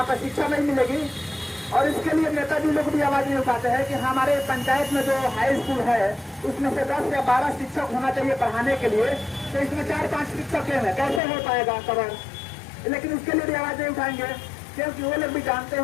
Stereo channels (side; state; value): right; drops out; at 11.2 s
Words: पर शिक्षा नहीं मिलेगी। और इसके लिए नेताजी लोग भी आवाज नहीं उठाते हैं कि हमारे पंचायत में जो हाई स्कूल है उसमें से 10 या 12 शिक्षक होना चाहिए पढ़ाने के लिए, तो इसमें 4-5 शिक्षक हैं, कैसे हो पाएगा कवर? लेकिन उसके लिए भी आवाज नहीं उठाएंगे, क्योंकि वो लोग भी जानते